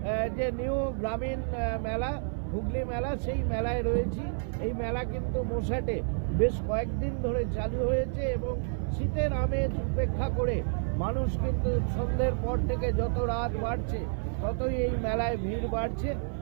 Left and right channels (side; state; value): left; silent; 57 dB below the other